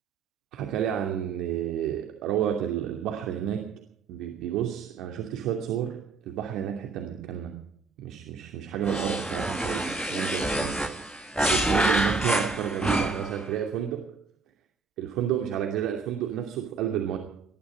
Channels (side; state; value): left; quieter; 5.0 dB